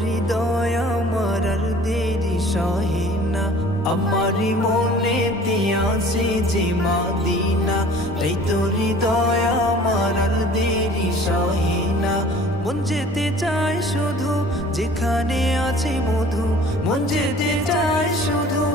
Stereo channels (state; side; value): normal; both; correlation 0.49